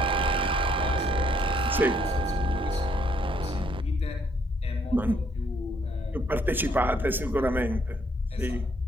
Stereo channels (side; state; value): both; normal; correlation 0.69